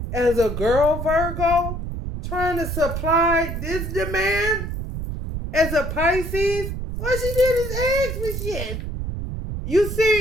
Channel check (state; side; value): noise; right; rumble, 5 dB below the sound